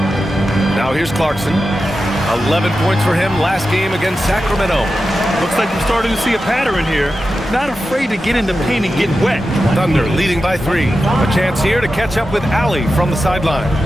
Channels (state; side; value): normal; both; correlation 0.91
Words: Now here's Clarkson. 11 points for him last game against Sacramento. Looks like we're starting to see a pattern here. Not afraid to get in the paint and get wet. Thunder leading by 3. A chance here to catch up with Allie from the sideline.